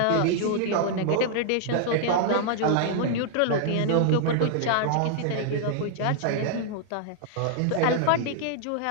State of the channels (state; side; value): different; both; correlation -0.01